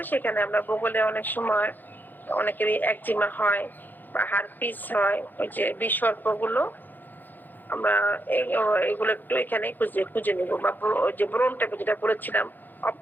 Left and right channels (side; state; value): right; late; 0.087 ms